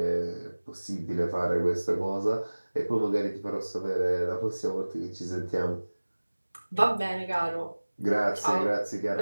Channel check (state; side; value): inverted; both; correlation -1.00